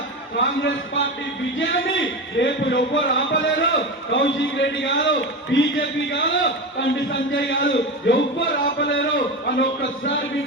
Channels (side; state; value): both; normal; correlation 0.22